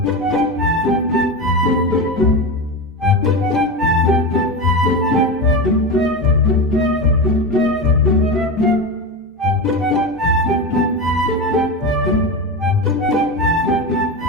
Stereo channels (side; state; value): both; normal; correlation 0.20